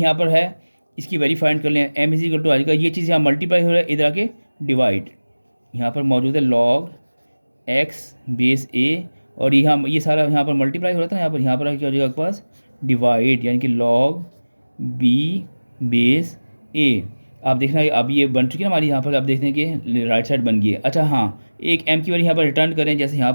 पर है, इसकी वैल्यू फाइंड कर लें। एम इज इक्वल टू आएगा, ये चीज़ यहाँ मल्टीप्लाई हो रहा है, इधर आके डिवाइड यहाँ पर मौजूद है लॉग एक्स बेस ए, और ये सारा यहाँ पर मल्टीप्लाई हो रहा था यहाँ पर क्या हो जाएगा आपके पास डिवाइड, यानी कि लॉग बी बेस ए। आप देखना अब ये बन चुकी है ना हमारी, यहाँ पर आप देखते हैं कि राइट साइड बन गई है। अच्छा हाँ, एक एम की वैल्यू यहाँ पर रिटर्न करें, जैसे यहाँ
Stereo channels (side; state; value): both; inverted; correlation -1.00